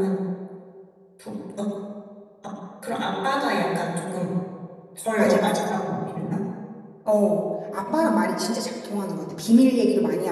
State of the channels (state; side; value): identical; both; correlation 1.00